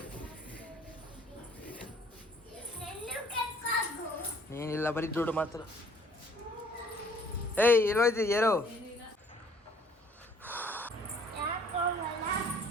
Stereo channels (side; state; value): both; normal; correlation 0.57